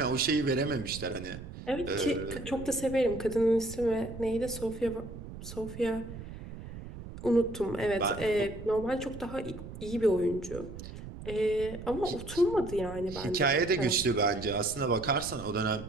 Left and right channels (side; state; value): right; noise; rumble, 12 dB below the sound